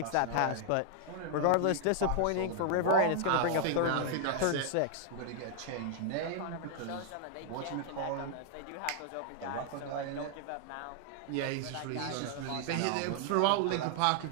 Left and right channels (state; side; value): different; both; correlation 0.00